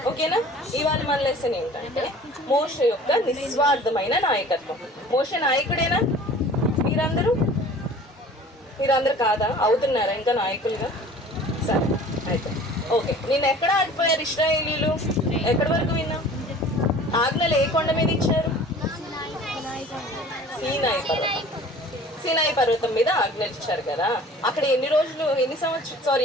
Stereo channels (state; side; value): normal; both; correlation 0.46